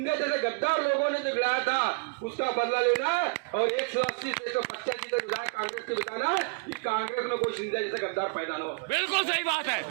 जैसे गद्दार लोगों ने जो गिराया था उसका बदला लेना, और 180 से 185 तक विधायक कांग्रेस के बताना कि कांग्रेस में कोई सिंधे जैसे गद्दार पैदा न हो। बिल्कुल सही बात है।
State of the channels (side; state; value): left; quieter; 35.8 dB